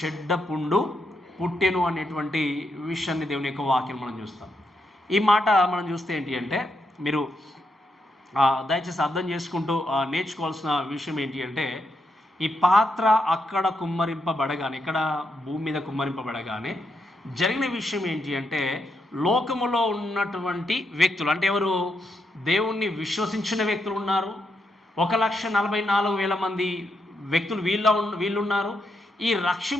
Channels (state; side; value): normal; both; correlation 0.81